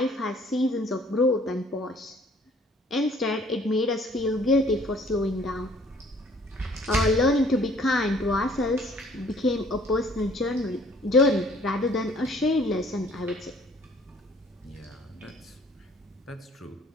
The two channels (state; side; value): normal; both; correlation 0.57